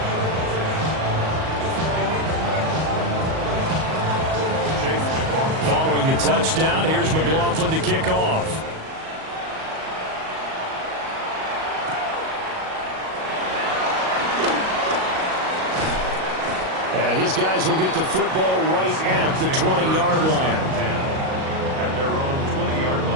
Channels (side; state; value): left; late; 38 ms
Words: Following the touchdown, here's McLaughlin to kick off. And his guys will get the football right at the 20-yard line. At their own 20-yard